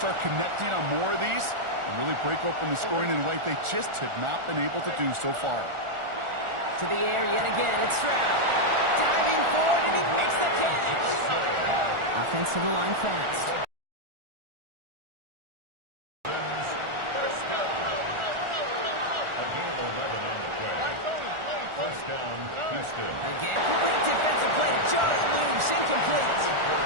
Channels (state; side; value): late; left; 1.4 ms